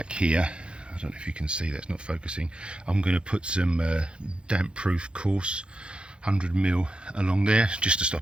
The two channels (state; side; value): late; left; 0.056 ms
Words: here, I don't know if you can see, that's not focusing, I'm going to put some damp proof coarse 100mm along there, just to stop